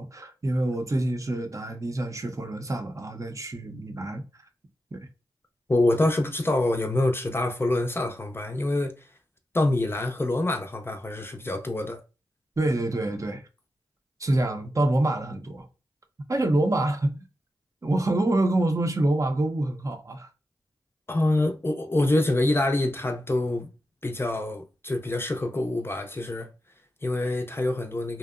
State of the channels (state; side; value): normal; both; correlation 0.89